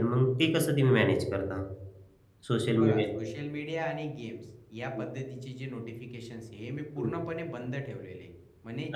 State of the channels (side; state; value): both; identical; correlation 1.00